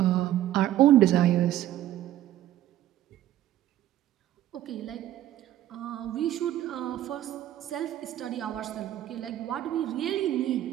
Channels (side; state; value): left; quieter; 13.0 dB